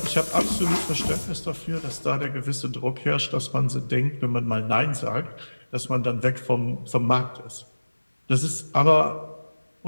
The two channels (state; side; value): inverted; both; correlation -1.00